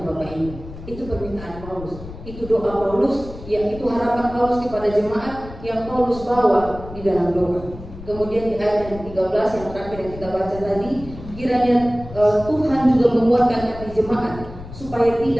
Bapak Ibu. Itu permintaan Paulus, itu doa Paulus, yang itu harapan Paulus kepada jemaat yang Paulus bawa di dalam doa. Kemudian di ayat yang 13 yang terakhir yang kita baca tadi, kiranya Tuhan juga menguatkan hati jemaat supaya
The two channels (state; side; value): noise; left; rumble, 14 dB below the sound